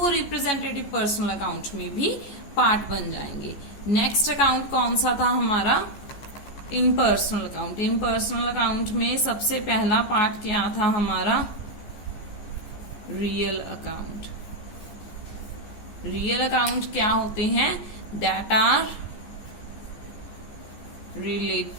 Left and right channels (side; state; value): right; late; 15 ms